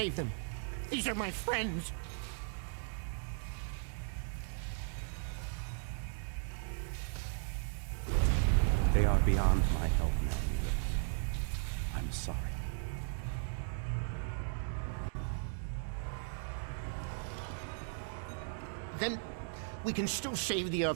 them. These are my friends. They are beyond my help now, Neelix. I'm sorry. Then we can still save the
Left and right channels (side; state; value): left; silent; digital silence